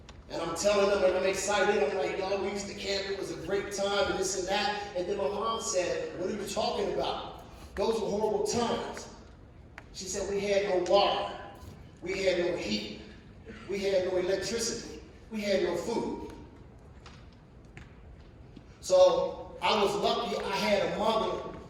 And I'm telling them, and I'm excited. I'm like, y'all, we used to camp. It was a great time, and this and that. And then my mom said, what are you talking about? Those were horrible times. She said, we had no water. We had no heat. We had no electricity. We had no food. So I was lucky I had a mother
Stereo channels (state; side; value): identical; both; correlation 1.00